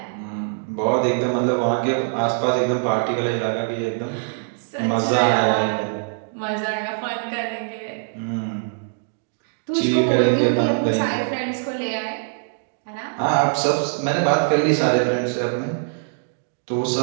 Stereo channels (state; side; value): silent; left; digital silence